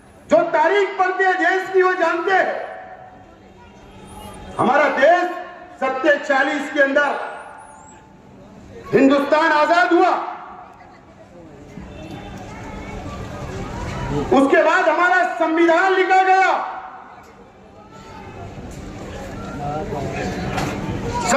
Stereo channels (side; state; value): both; identical; correlation 1.00